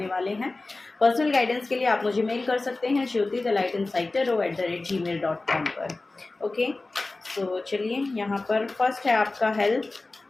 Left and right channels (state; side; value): quieter; right; 3.3 dB